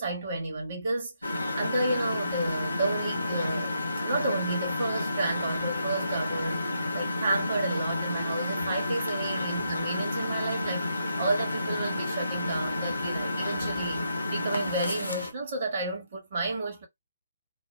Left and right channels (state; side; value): inverted; both; correlation -0.79